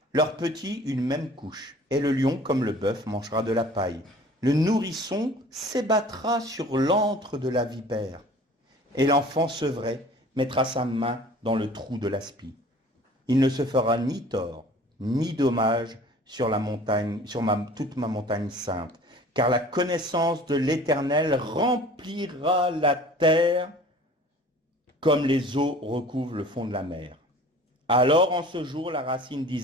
leurs petits une même couche, et le lion, comme le bœuf, mangera de la paille. Le nourrisson s'ébattra sur l'antre de la vipère, et l'enfant sevré mettra sa main dans le trou de l'aspi. Il ne se fera ni tort, ni dommage sur la montagne, toute ma montagne sainte, car la connaissance de l'Éternel remplira la terre comme les eaux recouvrent le fond de la mer. Alors en ce jour, la racine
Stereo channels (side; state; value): both; normal; correlation 0.47